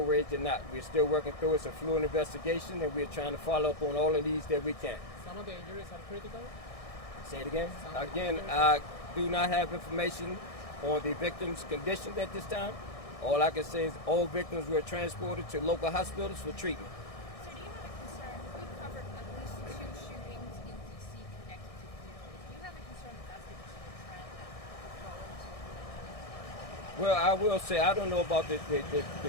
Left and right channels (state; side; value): late; right; 1.6 ms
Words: rage or not. We're still working through it. It's a fluid investigation, and we're trying to follow up on all of these that we can. Some of the injuries are critical. Say it again. Again, I do not have information on the victim's condition at this time. All I can say is all victims were transported to local hospitals for treatment. So do you have a concern? We've covered at least 2 shootings in D.C. connected to funerals. Do you have a concern that that's going to be a trend that will go into? Well, I will say I don't know about the